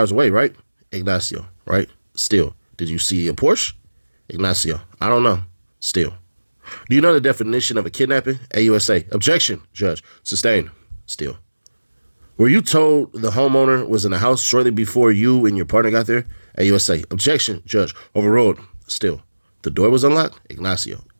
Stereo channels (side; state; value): both; inverted; correlation -1.00